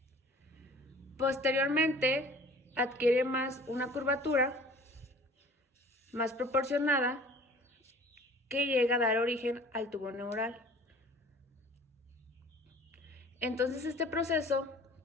Posteriormente, adquiere una curvatura más proporcionada que llega a dar origen al tubo neural. Entonces, este proceso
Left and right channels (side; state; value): both; normal; correlation 0.47